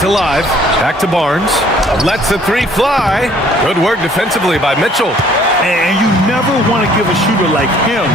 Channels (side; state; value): both; normal; correlation 0.58